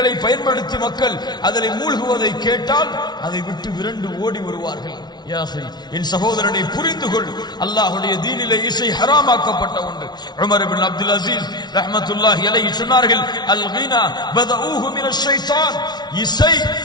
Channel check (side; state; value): right; late; 0.20 ms